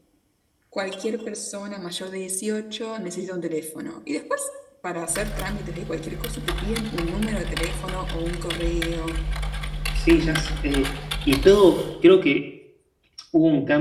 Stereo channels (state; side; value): identical; both; correlation 1.00